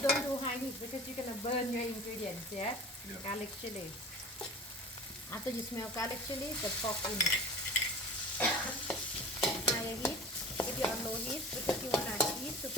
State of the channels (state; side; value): normal; both; correlation 0.38